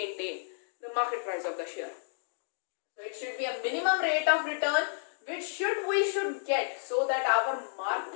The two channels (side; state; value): right; silent; digital silence